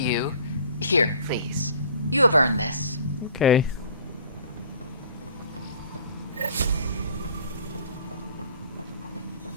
Here, please. You have earned this. Okay.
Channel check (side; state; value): both; inverted; correlation -0.49